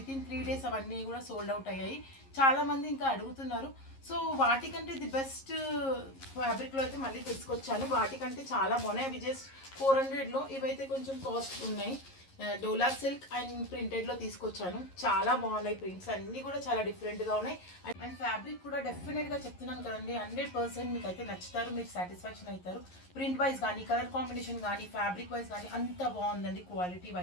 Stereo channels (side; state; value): right; late; 11 ms